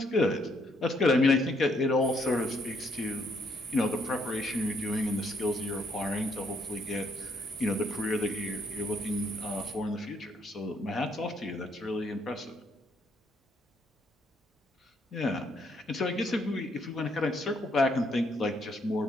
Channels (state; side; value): normal; both; correlation 0.71